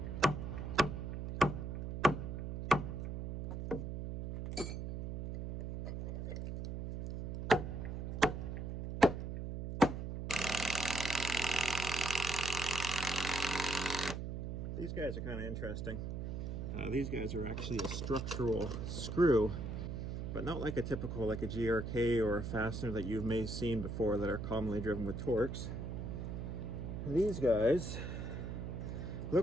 These guys are kind of interesting. These guys are actually a structural screw, but not like a typical, like a GRK or a fastener that you may have seen before that are commonly driven with Torx. These guys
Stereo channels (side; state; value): right; noise; hum, 4 dB below the sound